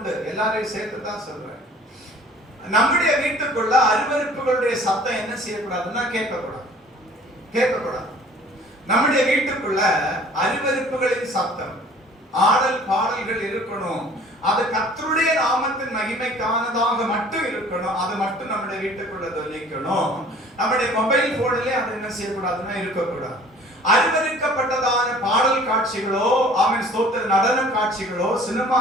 எல்லாரையும் சேர்த்து தான் சொல்றேன். நம்முடைய வீட்டுக்குள்ள அருவருப்புகளுடைய சத்தம் என்ன செய்யக்கூடாதுன்னா கேட்கக்கூடாது. நம்முடைய வீட்டுக்குள்ள அருவருப்புகளின் சத்தம், ஆடல் பாடல்கள் இருக்கணும். அது கர்த்தருடைய நாமத்தின் மகிமைக்கானதாக மட்டும் இருக்கணும். அது மட்டும் நம்முடைய வீட்டுக்குள்ள தொனிக்கணும். நம்முடைய மொபைல் போன்லயே அது என்ன செய்யக்கூடாதுன்னா இருக்கக்கூடாது. அருவருக்கப்பட்டதான பாடல் காட்சிகளோ, ஆமென் ஸ்தோத்திர, நடன காட்சிகளோ, சினிமா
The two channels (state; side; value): normal; both; correlation 0.50